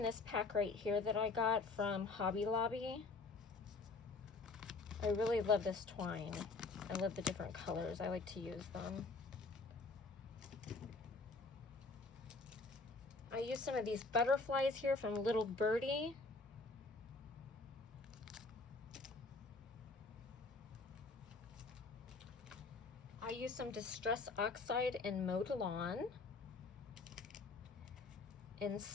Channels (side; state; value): right; quieter; 3.8 dB